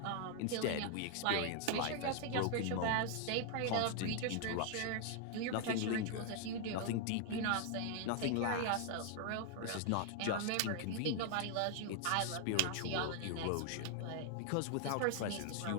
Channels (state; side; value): different; both; correlation 0.00